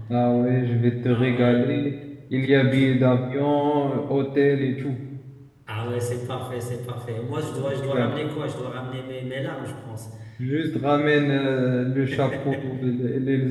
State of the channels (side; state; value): both; identical; correlation 1.00